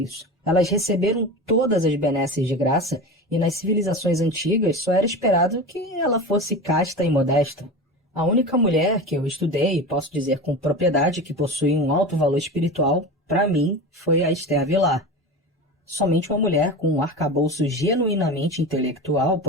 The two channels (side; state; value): both; normal; correlation 0.28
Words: Elas receberam todas as benesses de graça e nas civilizações antigas só era esperado que ela fosse casta e modesta. A única mulher que eu estudei, e posso dizer com propriedade que possui um alto valor espiritual, para mim, foi a Esther Vilar. Somente uma mulher com um arcabouço genuinamente intelectual